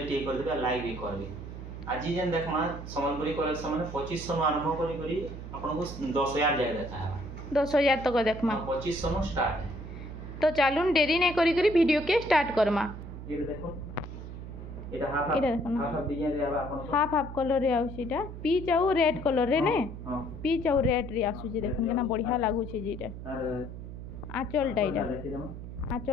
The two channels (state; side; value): noise; right; hum, 10 dB below the sound